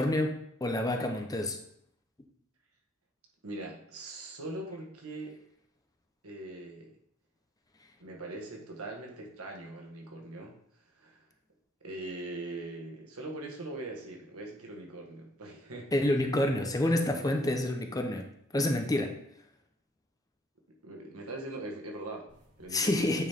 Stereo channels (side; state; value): both; normal; correlation 0.67